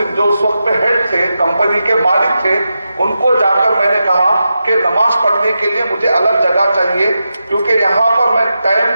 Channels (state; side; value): inverted; both; correlation -0.89